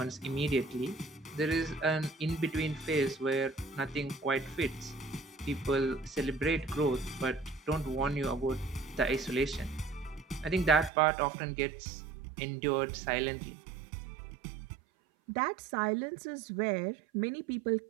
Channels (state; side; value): drops out; left; at 10.9 s